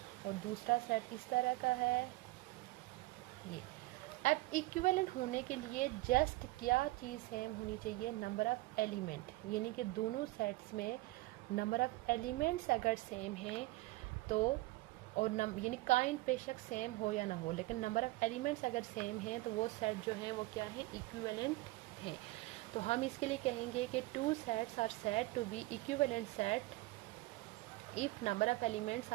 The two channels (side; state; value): left; quieter; 20.4 dB